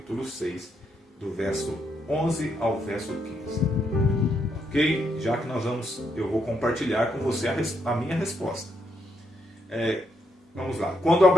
6, do verso 11 ao verso 15. Ok? Já que eu vou compartilhar com você a minha resposta. Vamos lá. Quando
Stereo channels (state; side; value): normal; both; correlation 0.77